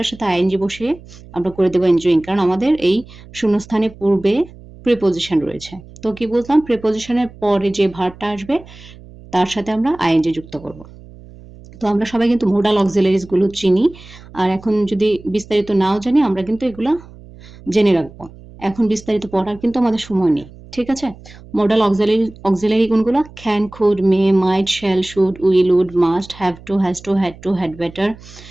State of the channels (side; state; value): right; noise; hum, 20 dB below the sound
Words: সাথে আইএনজি বসিয়ে আমরা করে দেবো এনজয়িং, কারণ আমাদের এই শূন্যস্থানের পূর্বে প্রিপোজিশন রয়েছে। তো কি বললাম? প্রিপোজিশনের পরে যে ভার্বটা আসবে তার সাথে আমরা আইএনজি যুক্ত করব। তো আমরা সবাই কিন্তু মোডাল অক্সিলারিজ গুলো চিনি, আর এখন যদি বিস্তারিত নাও জানি, আমরা কিন্তু এগুলা জেনে রাখবো। এখন বিস্তারিত পড়ার কিন্তু আমাদের সময় নেই, ঠিক আছে? মোডাল অক্সিলারি কোনগুলো? Can, could, may, might, shall, should, will, would, must, have to, has to, had to, had better.